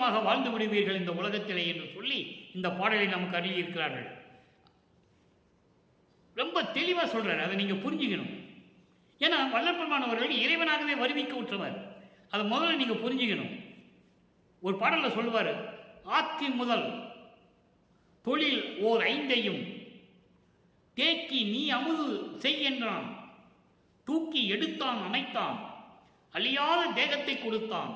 வாழ்ந்து விடுவீர்கள் இந்த உலகத்திலே என்று சொல்லி இந்த பாடலை நமக்கு அருளியிருக்கிறார்கள். ரொம்ப தெளிவாக சொல்றாரு. அதை நீங்க புரிஞ்சுக்கணும். ஏன்னா வல்லற்பெருமானவர்கள் இறைவனாகவே வருவிக்க உற்றவர். அதை முதல்ல நீங்க புரிஞ்சுக்கணும். ஒரு பாடல்ல சொல்லுவார், ஆக்கி முதல் தொழில் ஓர் 5ஐயும் தேக்கி நீ அமுது செய்கின்றான், தூக்கி எடுத்தான் அணைத்தான், அழியாத தேகத்தை கொடுத்தான்,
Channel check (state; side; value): identical; both; correlation 1.00